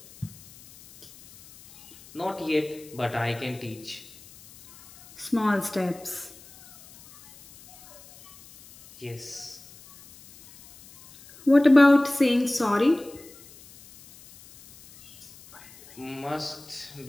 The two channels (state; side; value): noise; left; hiss, 22 dB below the sound